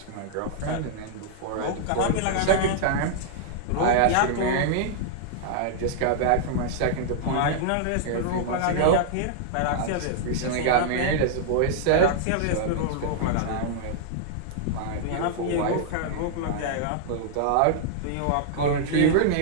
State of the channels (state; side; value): different; both; correlation -0.01